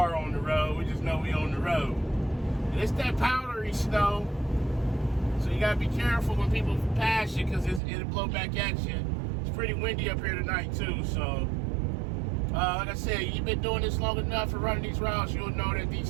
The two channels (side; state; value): left; drops out; at 7.8 s